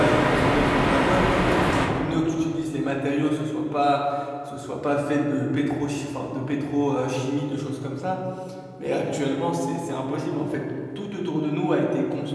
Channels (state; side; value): identical; both; correlation 1.00